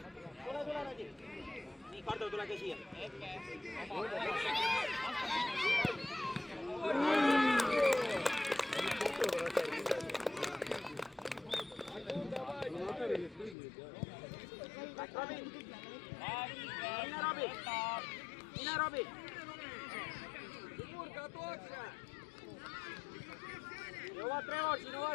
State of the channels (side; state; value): right; drops out; at 13.6 s